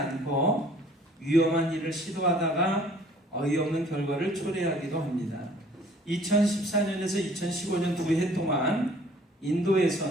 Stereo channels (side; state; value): both; normal; correlation 0.55